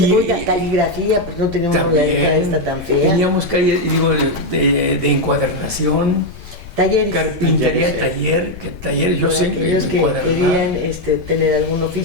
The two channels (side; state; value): left; noise; rumble, 15 dB below the sound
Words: Oiga, caligrafía, pues no teníamos la letra esta tan fea. Teníamos calle, de encuadernación, Talleres. carpintería, taller, yo sé Aquellos que encuadernar. querían tener algún